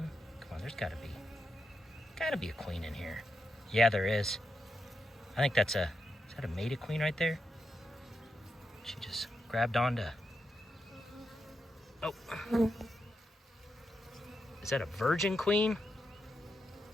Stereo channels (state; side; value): normal; both; correlation 0.85